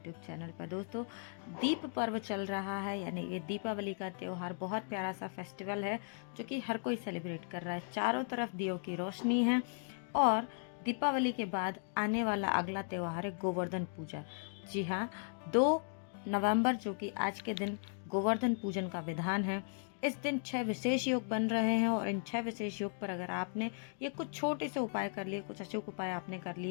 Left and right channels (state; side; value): silent; right; 53 dB below the other